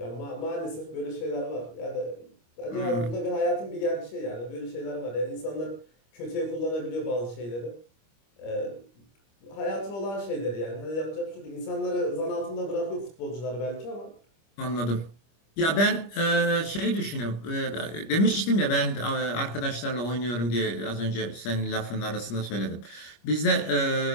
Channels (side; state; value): right; late; 25 ms